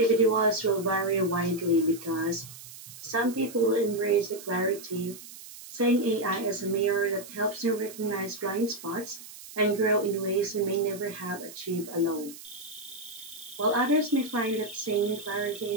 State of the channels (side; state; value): right; noise; hiss, 15 dB below the sound